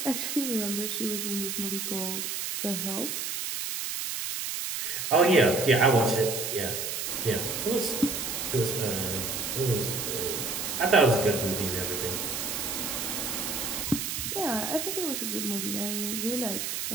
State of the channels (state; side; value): noise; right; hiss, 3 dB below the sound